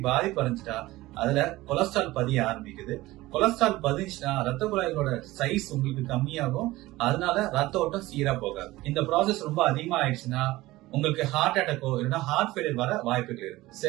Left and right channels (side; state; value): left; quieter; 18.3 dB